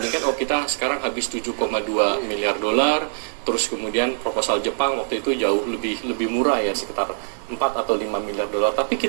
oh kita sekarang habis 7,2 miliar dolar, terus kemudian proposal Jepang waktu itu jauh lebih murah ya, sekitar 4 atau 5 miliar dolar. Tapi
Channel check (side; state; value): left; silent; 63 dB below the other